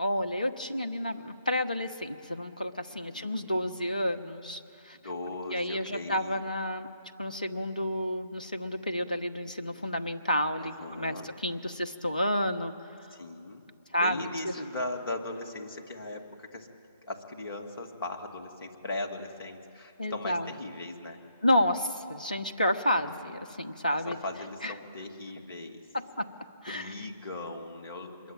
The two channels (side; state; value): both; inverted; correlation -0.74